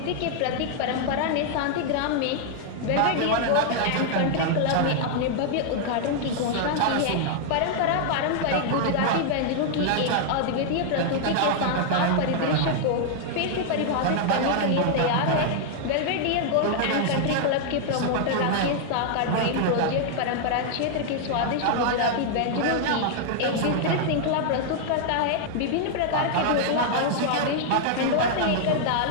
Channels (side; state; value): both; different; correlation -0.01